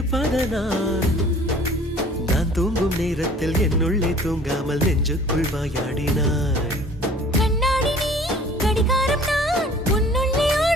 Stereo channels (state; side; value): normal; both; correlation 0.50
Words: நான் தூங்கும் நேரத்தில் என்னுள்ளே தூங்காமல் நெஞ்சுக்குள் வாயாடினாய். கண்ணாடி நீ கடிகாரம் நான் உன்னுள்ளே